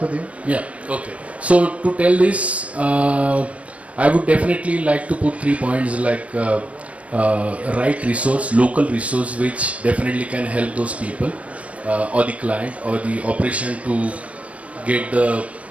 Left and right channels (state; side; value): late; left; 0.065 ms